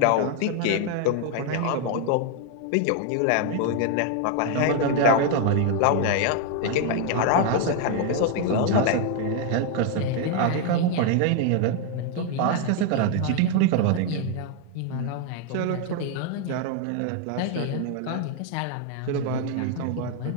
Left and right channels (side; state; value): both; different; correlation 0.00